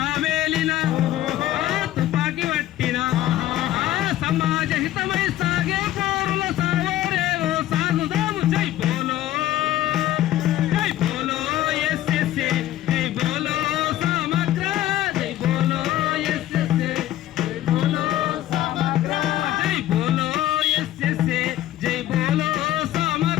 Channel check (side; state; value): right; quieter; 13.8 dB